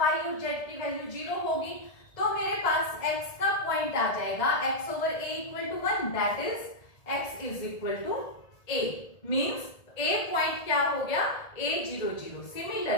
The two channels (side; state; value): right; late; 1.7 ms